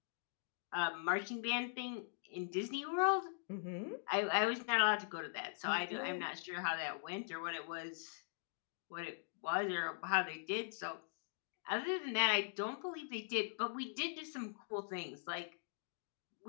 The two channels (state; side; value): silent; right; digital silence